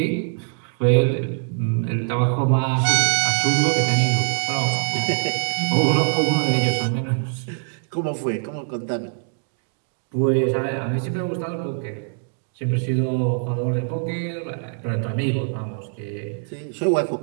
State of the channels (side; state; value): left; silent; 57 dB below the other